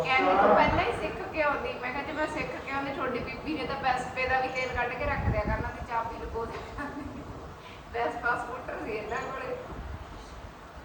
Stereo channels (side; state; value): both; identical; correlation 1.00